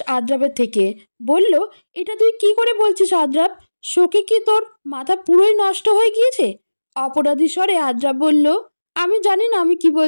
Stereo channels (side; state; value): both; inverted; correlation -1.00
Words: আদ্রাবের থেকে। বলল, এটা তুই কি করে বলছিস আদ্রাব? শোকে কি তোর মাথা পুরোই নষ্ট হয়ে গিয়েছে? অপরাধী স্বরে আদ্রাব বলল, আমি জানি না আমি কি